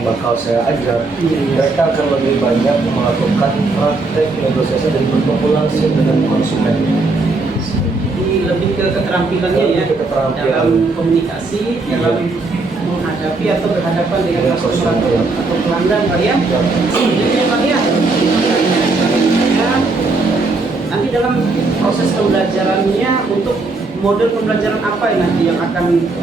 bakal saya ajar, mereka akan lebih banyak melakukan praktek negosiasi dan bertemu langsung dengan konsumen. Jadi lebih ke keterampilannya ya, dalam komunikasi, dalam menghadapi atau berhadapan dengan customer atau pelanggan Pak ya. Selanjutnya Pak ya, nanti dalam proses pembelajarannya untuk model pembelajaran apa nanti yang akan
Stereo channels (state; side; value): quieter; left; 3.5 dB